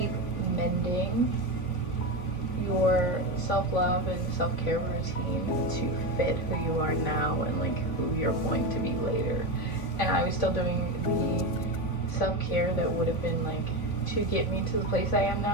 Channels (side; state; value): right; late; 3.5 ms